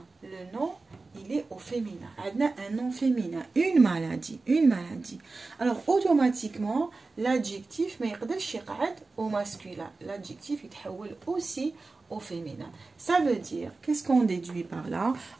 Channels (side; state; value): left; quieter; 3.7 dB